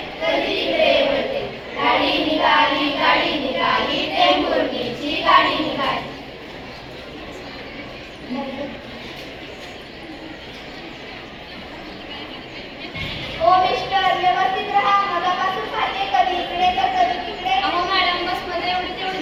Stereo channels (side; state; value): both; identical; correlation 1.00